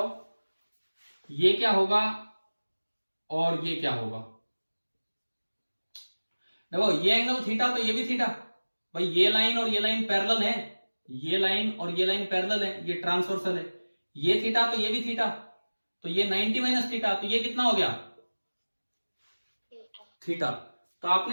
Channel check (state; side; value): inverted; both; correlation -1.00